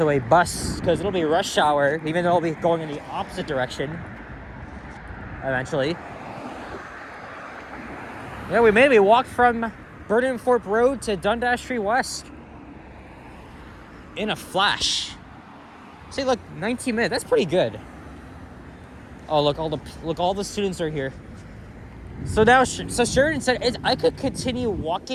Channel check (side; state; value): both; identical; correlation 1.00